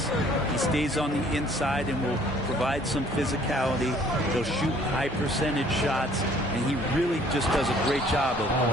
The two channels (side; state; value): both; normal; correlation 0.58